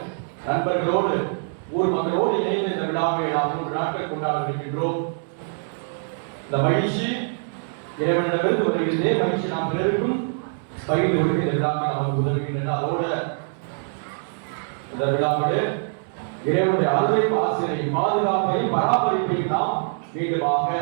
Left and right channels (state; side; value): silent; left; 63 dB below the other